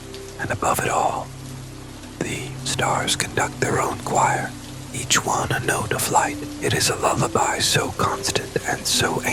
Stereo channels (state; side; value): identical; both; correlation 1.00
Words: And above it all, the stars conduct their own choir, each one a note of light. It is a lullaby so constant and so